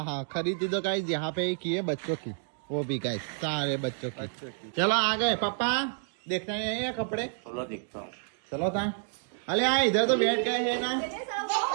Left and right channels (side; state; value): left; silent; digital silence